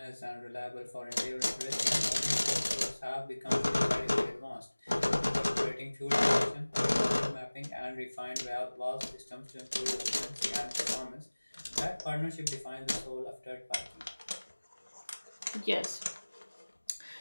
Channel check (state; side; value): inverted; both; correlation -1.00